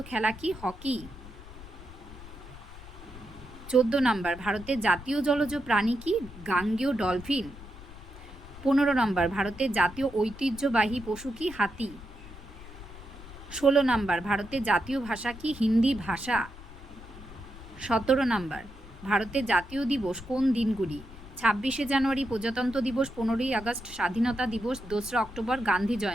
খেলা কি? হকি। 14 নাম্বার, ভারতের জাতীয় জলজ প্রাণী কি? গাঙ্গেয় ডলফিন। 15 নাম্বার, ভারতের জাতীয় ঐতিহ্যবাহী পশু কি? হাতি। 16 নাম্বার, ভারতের জাতীয় ভাষা কি? হিন্দি ভাষা। 17 নাম্বার, ভারতের জাতীয় দিবস কোন দিনগুলি? 26শে জানুয়ারি প্রজাতন্ত্র দিবস, 15ই আগস্ট স্বাধীনতা দিবস, 2রা অক্টোবর গান্ধী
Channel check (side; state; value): left; noise; rumble, 16 dB below the sound